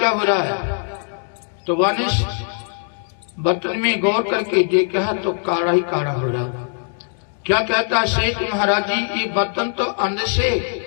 हो रहा है। तो वाने बर्तन में गौर करके देखा तो काढ़ा ही काढ़ा हो रहा। क्या कहता है सेठ महाराज जी, ये बर्तन तो अंदर से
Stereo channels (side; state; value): right; silent; 65 dB below the other